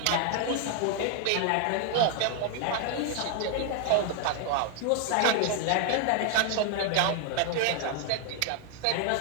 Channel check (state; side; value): different; both; correlation 0.00